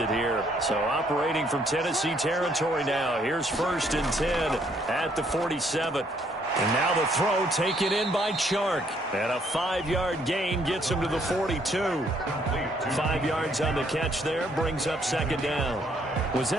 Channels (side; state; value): both; normal; correlation 0.68